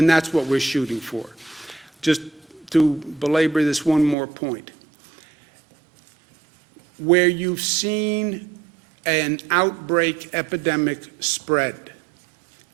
that's what we're shooting for. Just to belabor this one more point. Where you've seen an outbreak epidemic spread,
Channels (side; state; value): left; drops out; at 4.2 s